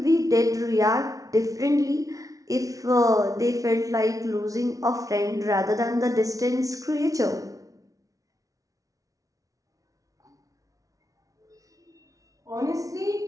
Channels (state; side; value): late; left; 0.17 ms